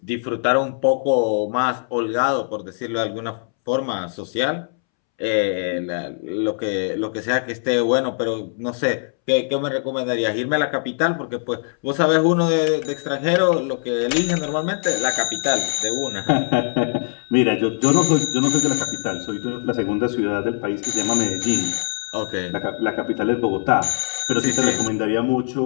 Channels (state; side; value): silent; right; 65 dB below the other